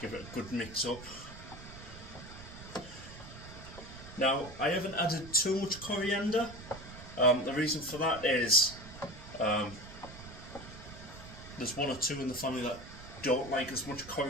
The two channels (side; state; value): right; noise; rumble, 15 dB below the sound